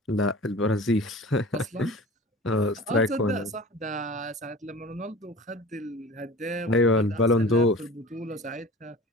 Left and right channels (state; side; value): normal; both; correlation 0.39